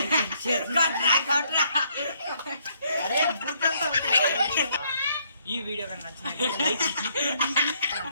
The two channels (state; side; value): inverted; both; correlation -0.70